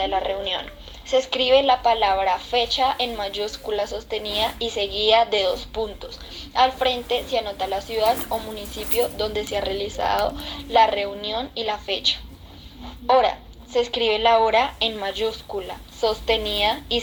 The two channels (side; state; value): both; identical; correlation 1.00